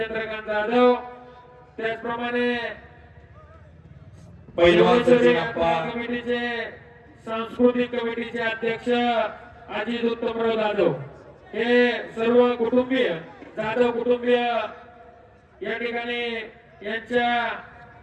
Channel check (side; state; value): both; identical; correlation 1.00